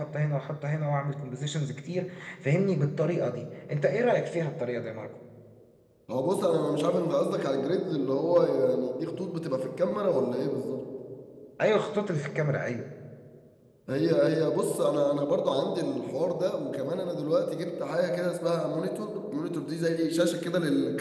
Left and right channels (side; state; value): both; identical; correlation 1.00